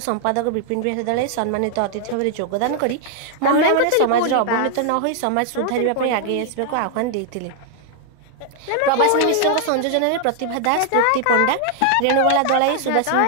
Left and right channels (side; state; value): both; different; correlation 0.00